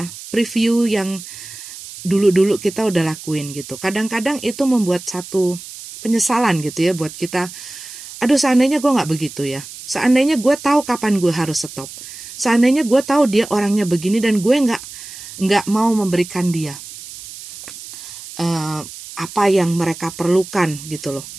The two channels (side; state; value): right; noise; hiss, 14 dB below the sound